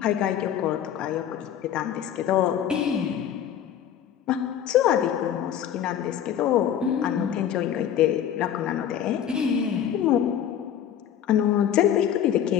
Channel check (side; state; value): right; quieter; 9.7 dB